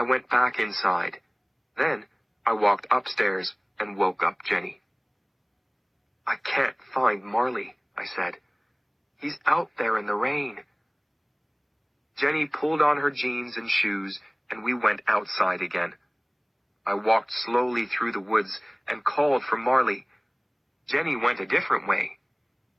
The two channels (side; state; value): both; identical; correlation 1.00